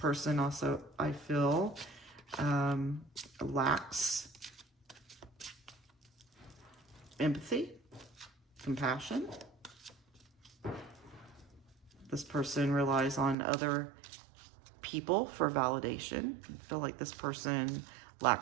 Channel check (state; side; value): drops out; left; at 13.4 s